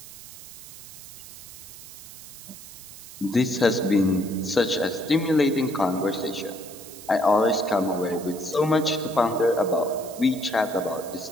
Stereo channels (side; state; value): right; noise; hiss, 15 dB below the sound